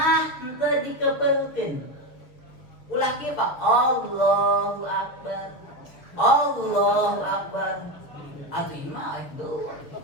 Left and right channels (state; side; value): late; right; 6.4 ms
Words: henteu dikepeulkeun. Ulah kieu Pak. Allahu akbar. Allahu akbar. Atuh ieu mah itu.